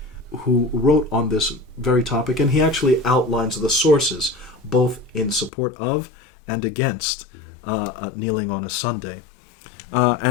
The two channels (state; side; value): drops out; right; at 5.5 s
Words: who wrote on this very topic, and he actually outlines the sources, both in support of and against kneeling on a Sunday.